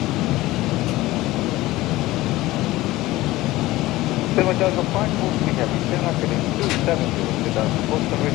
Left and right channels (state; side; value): quieter; right; 17.9 dB